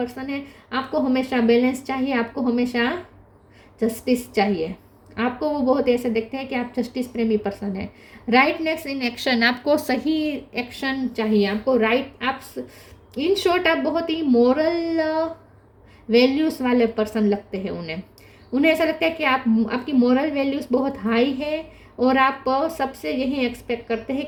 है। आपको हमेशा बैलेंस चाहिए, आपको हमेशा जस्टिस चाहिए। आपको वो बहुत ऐसे देखते हैं कि आप जस्टिस प्रेमी पर्सन है। राइटनेस इन एक्शन, आपको सही एक्शन चाहिए, आपको आप इन शॉर्ट आप बहुत ही मॉरल वैल्यूज़ वाले पर्सन लगते हैं उन्हें ऐसा लगता है कि आपकी मॉरल वैल्यूज़ बहुत हाई है और आप सबसे यही एक्सपेक्ट करते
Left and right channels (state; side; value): identical; both; correlation 1.00